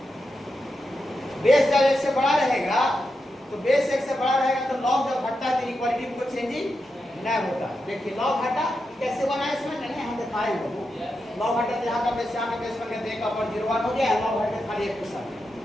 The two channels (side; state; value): both; normal; correlation 0.87